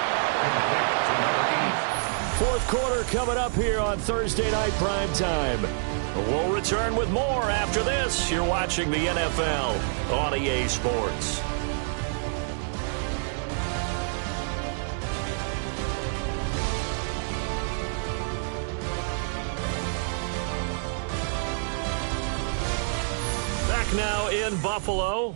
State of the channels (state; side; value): silent; left; digital silence